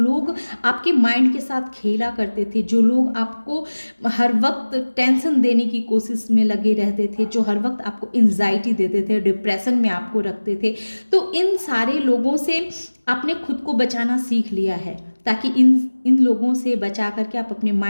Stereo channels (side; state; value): both; inverted; correlation -1.00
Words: आपके माइंड के साथ खेला करते थे, जो लोग आपको हर वक्त टेंशन देने की कोशिश में लगे रहते थे, जो हर वक्त आपको एंजाइटी देते थे, डिप्रेशन में आपको रखते थे। तो इन सारे लोगों से आपने खुद को बचाना सीख लिया है, ताकि इन लोगों से बचा करके आप अपने